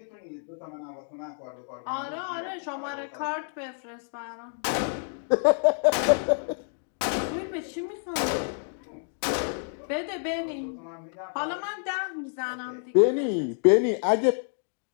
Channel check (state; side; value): silent; right; 59 dB below the other